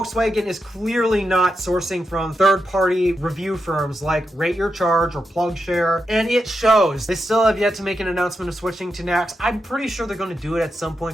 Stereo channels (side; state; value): both; normal; correlation 0.87